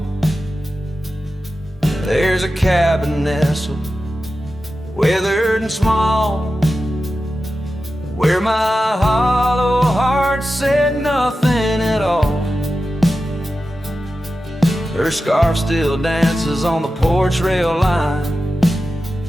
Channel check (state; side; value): normal; both; correlation 0.92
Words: there's a cabin nestled, weathered and small, where my hollow heart said nothing at all. Her scarf still dances on the porch rail line,